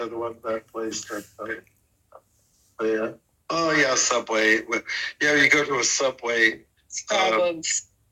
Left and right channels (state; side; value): identical; both; correlation 1.00